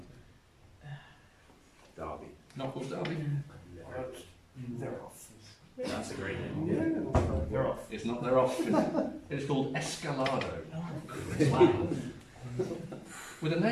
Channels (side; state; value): both; identical; correlation 1.00